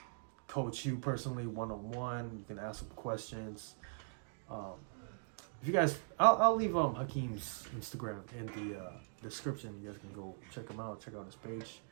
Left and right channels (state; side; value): silent; left; digital silence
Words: coach you personally one-on-one. You can ask them questions. If you guys, I'll leave Hakeem's Instagram in the description. You guys can go check him out. Check out his page.